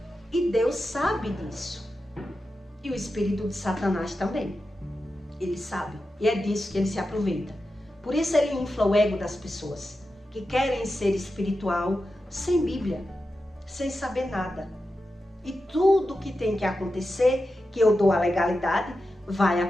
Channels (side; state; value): both; normal; correlation 0.91